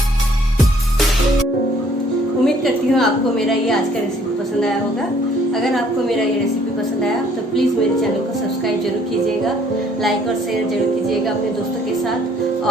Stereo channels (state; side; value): normal; both; correlation 0.61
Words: उम्मीद करती हूँ आपको मेरा ये आज का रेसिपी पसंद आया होगा। अगर आपको मेरा ये रेसिपी पसंद आया तो प्लीज़ मेरे चैनल को सब्सक्राइब जरूर कीजिएगा, लाइक और शेयर जरूर कीजिएगा अपने दोस्तों के साथ।